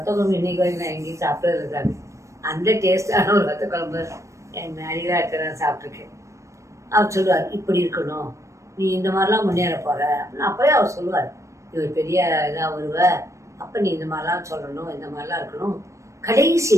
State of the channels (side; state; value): left; late; 0.15 ms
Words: குழம்பு இன்னைக்கு வரைக்கும் நான் எங்கேயும் சாப்பிட்றது சாமி. அந்த டேஸ்டான ஒரு ஒத்த குழம்பு என் அடிகளாக இருக்கிற சாப்பிட்ருக்கேன். அவர் சொல்லுவார், இப்படி இருக்கணும், நீ இந்த மாதிரிலாம் முன்னேற போகிற அப்படின்னு. அப்போயே அவர் சொல்லுவார், இவர் பெரிய இதாக வருவ, அப்போ நீ இந்த மாதிரிலாம் சொல்லணும், இந்த மாதிரிலாம் இருக்கணும். கடைசி